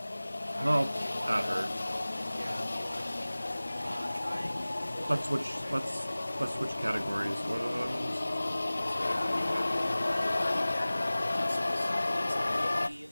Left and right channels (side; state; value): both; inverted; correlation -0.99